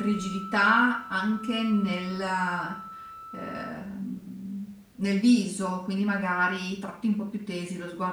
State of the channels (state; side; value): identical; both; correlation 1.00